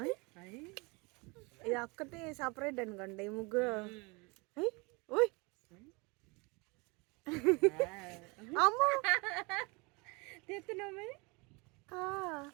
ఇది ఒక్కటి సపరేట్ అనుకోండి ఈ ముగ్గురు. ఓయ్ అమ్మో తెస్తున్నావు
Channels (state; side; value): quieter; left; 27.9 dB